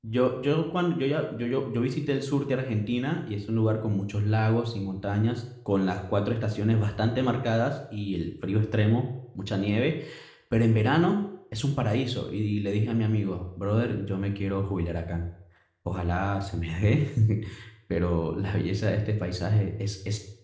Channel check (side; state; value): both; identical; correlation 1.00